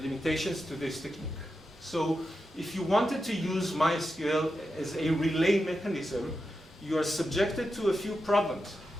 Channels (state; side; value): normal; both; correlation 0.89